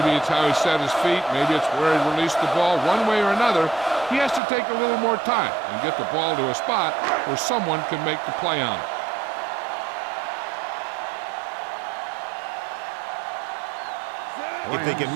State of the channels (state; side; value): drops out; left; at 4.4 s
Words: it's how he set his feet. Maybe it's where he released the ball. One way or another, he has to take a little more time and get the ball to a spot where someone can make the play on it. If they can